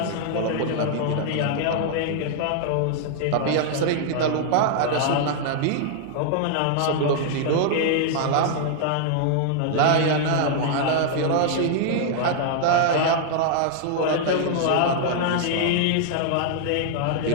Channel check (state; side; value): different; both; correlation -0.01